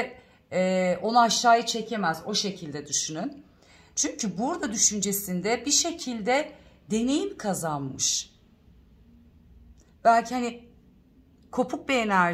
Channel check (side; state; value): both; identical; correlation 1.00